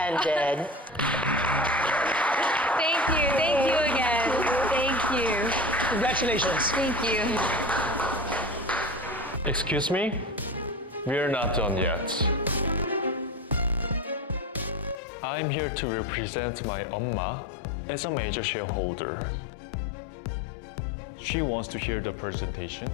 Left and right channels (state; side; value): drops out; right; at 15.0 s